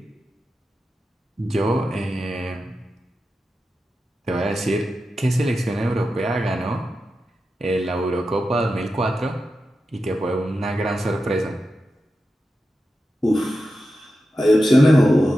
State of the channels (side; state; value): both; normal; correlation 0.91